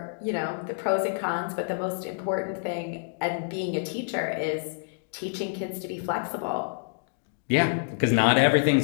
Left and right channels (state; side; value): silent; right; digital silence